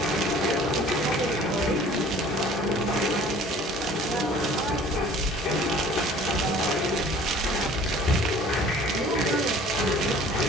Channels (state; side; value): normal; both; correlation 0.49